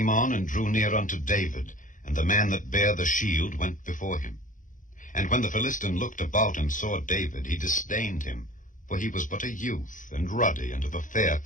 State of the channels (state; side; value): late; right; 0.38 ms